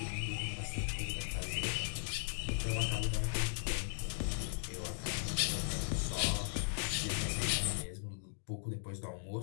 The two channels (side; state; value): right; silent; digital silence